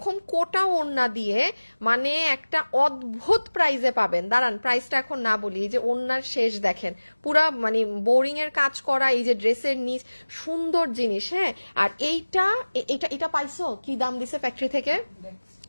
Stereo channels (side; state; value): both; inverted; correlation -1.00